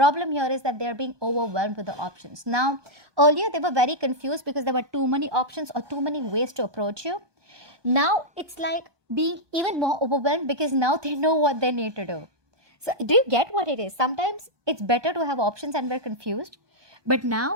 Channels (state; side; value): late; left; 1.2 ms